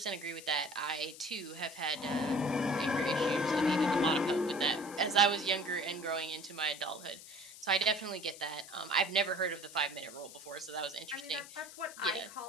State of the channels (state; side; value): noise; left; hiss, 16 dB below the sound